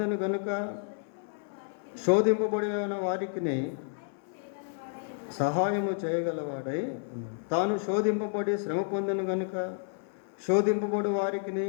కనుక శోధింపబడిన వారికి సహాయము చేయగలవాడై తాను శోధింపబడి శ్రమ పొందిన కనుక శోధింపబడి వారికి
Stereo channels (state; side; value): silent; right; 57 dB below the other